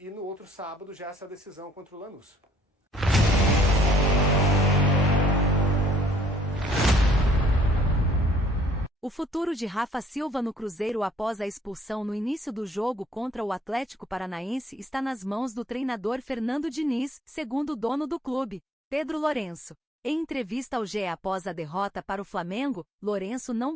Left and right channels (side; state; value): both; normal; correlation 0.61